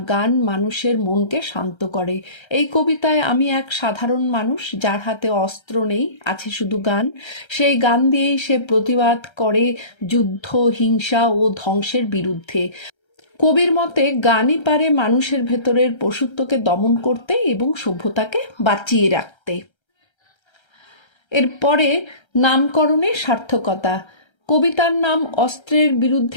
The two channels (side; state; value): right; late; 1.3 ms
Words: গান মানুষের মনকে শান্ত করে। এই কবিতায় আমি এক সাধারণ মানুষ, যার হাতে অস্ত্র নেই, আছে শুধু গান। সেই গান দিয়েই সে প্রতিবাদ করে যুদ্ধ, হিংসা ও ধ্বংসের বিরুদ্ধে। কবির মতে গানই পারে মানুষের ভেতরের পশুত্বকে দমন করতে এবং সভ্যতাকে বাঁচিয়ে রাখতে। এরপরে নামকরণের সার্থকতা। কবিতার নাম অস্ত্রের